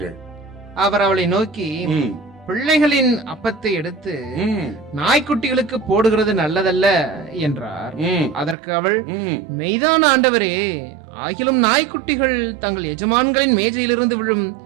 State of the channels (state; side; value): drops out; left; at 8.6 s